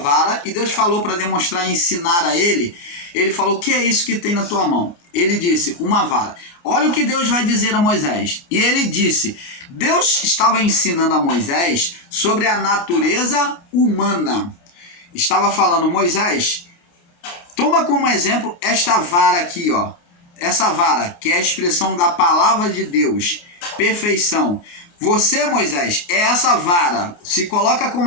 e Deus falou para demonstrar e ensinar a ele. Ele falou: o que é isso que tem na tua mão? Ele disse: uma vara. Olha o que Deus vai dizer a Moisés. E ele disse: Deus estava ensinando a Moisés sobre a natureza humana. Estava falando: Moisés, toma como exemplo esta vara aqui, ó. Essa vara, que é a expressão da palavra de Deus, perfeição. Você, Moisés, é essa vara. Se coloca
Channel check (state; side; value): late; right; 29 ms